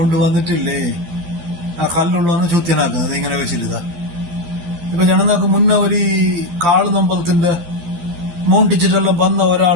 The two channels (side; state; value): left; late; 12 ms